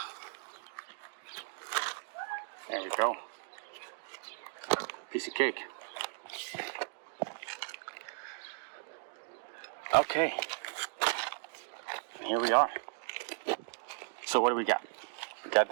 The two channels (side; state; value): left; silent; digital silence